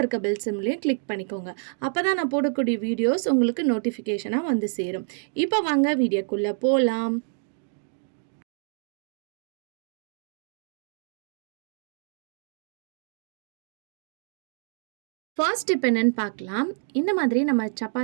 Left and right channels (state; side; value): silent; left; 57 dB below the other